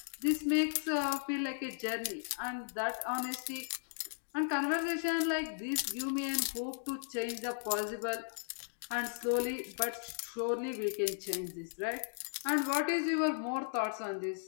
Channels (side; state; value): right; silent; digital silence